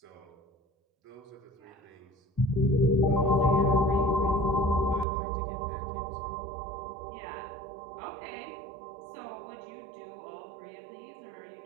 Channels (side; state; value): left; drops out; at 5.1 s